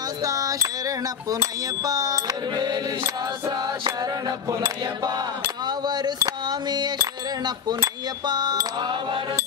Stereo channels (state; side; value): quieter; right; 7.3 dB